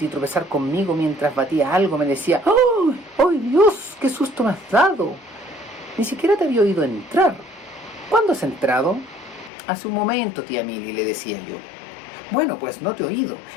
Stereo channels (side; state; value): right; drops out; at 9.5 s